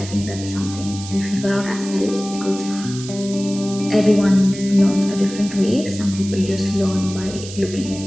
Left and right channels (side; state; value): right; noise; hiss, 13 dB below the sound